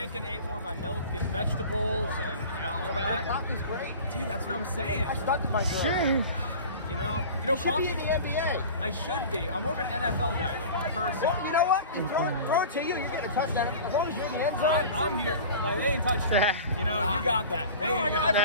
and ate more of my milk and vegetables and, you know, all that. Coffee's great. Dude, that's what I'm saying. I started my girl. Sure. You know, You should coffee, be in the NBA. I should be. I'm more of an NFL guy, though, personally. Well, you know what? You throw it to you. You're getting a touchdown. As long as you're in the end zone. I'm here. Like, they ain't touched me. You know, you got that. There you go.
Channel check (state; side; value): inverted; both; correlation -0.38